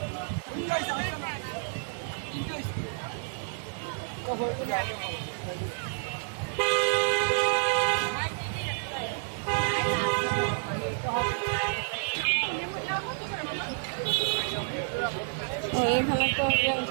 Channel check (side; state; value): left; silent; digital silence